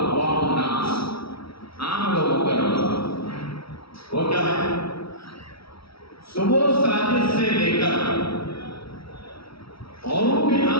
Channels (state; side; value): late; right; 0.76 ms